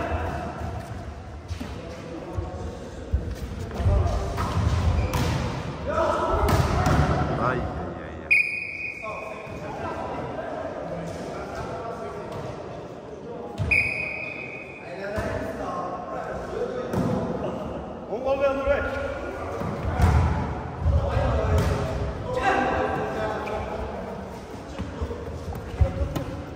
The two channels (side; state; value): both; identical; correlation 1.00